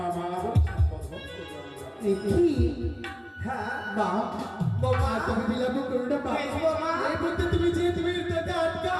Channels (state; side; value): identical; both; correlation 1.00